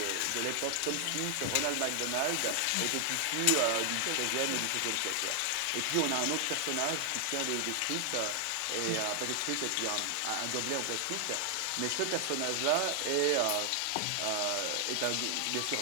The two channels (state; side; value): different; both; correlation 0.00